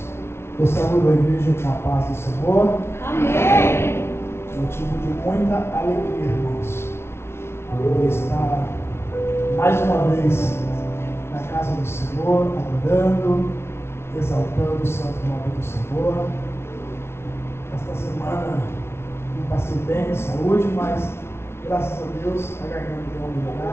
Eu saúdo a igreja com a paz do Senhor. Amém. Motivo de muita alegria, irmãos, poder estar mais uma vez na casa do Senhor, adorando, exaltando o santo nome do Senhor. Esta semana não passei bem de saúde, mas graças a Deus a garganta deu uma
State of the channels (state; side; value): late; right; 0.12 ms